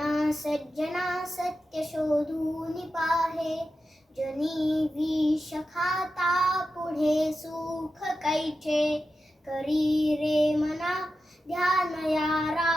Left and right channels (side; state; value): both; normal; correlation 0.91